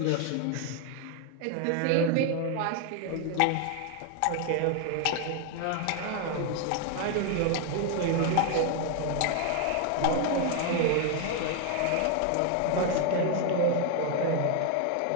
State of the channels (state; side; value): different; both; correlation 0.00